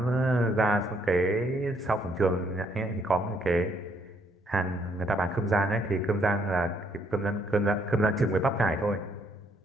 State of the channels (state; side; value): normal; both; correlation 0.70